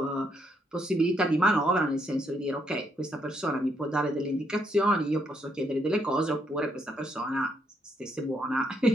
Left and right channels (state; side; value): normal; both; correlation 0.74